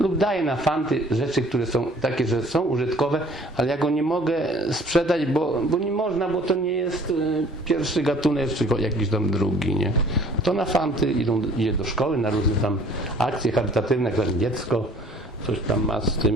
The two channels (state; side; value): normal; both; correlation 0.54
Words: daję na fanty rzeczy, które są takie, że są użytkowe, ale ja go nie mogę sprzedać, bo nie można, bo to nie jest pierwszy gatunek, czy jakiś tam drugi, nie? To na fanty idzie do szkoły, na różne tam akcje charytatywne, jak tam dziecko coś tam ma z